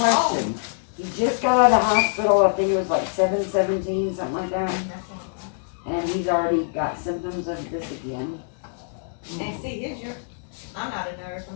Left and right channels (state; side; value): silent; right; 62 dB below the other